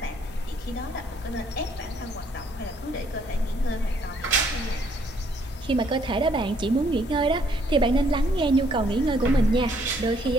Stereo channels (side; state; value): both; normal; correlation 0.67